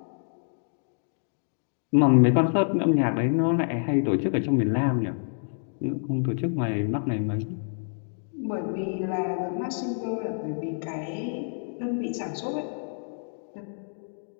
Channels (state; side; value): silent; right; digital silence